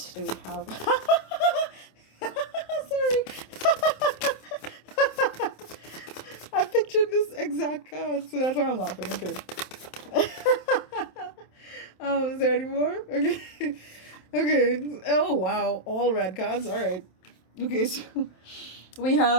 do we have? Sorry. I pictured this exact card, so that's why I'm laughing. Okay. Is there any more? Okay. Okay. Oh, wow. All red cards. All right. Okay, so we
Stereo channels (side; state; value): right; late; 27 ms